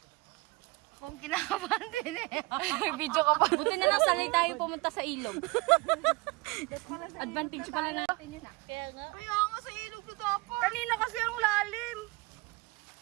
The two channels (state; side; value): quieter; left; 23.9 dB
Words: Ako ang kinakabahan din eh. Video ka pa. Buti na lang sanay tayo pumunta sa ilog. Advantage pala natin yun ah. Kaya nga. Kaya nga sa ilog na dapat. Kanina kasi ang lalim.